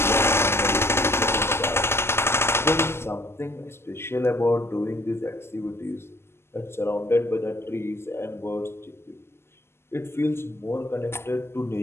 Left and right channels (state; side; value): late; right; 0.12 ms